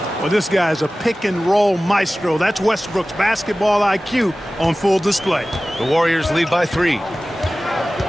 Well, this guy's a pick-and-roll maestro. That's Westbrook's basketball IQ on full display. The Warriors lead by 3.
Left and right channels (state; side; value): normal; both; correlation 0.97